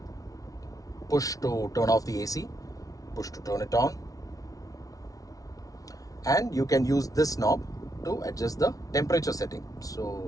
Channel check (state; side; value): late; right; 0.18 ms